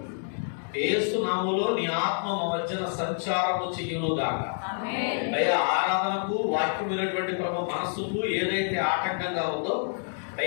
యేసు నామములో నీ ఆత్మ మధ్యన సంచారము చెయ్యును గాక. అయ్యా ఆరాధనకు వాక్యం వినేటువంటి ప్రభు మనస్సుకు ఏదైతే ఆటంకంగా ఉందో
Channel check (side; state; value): right; silent; digital silence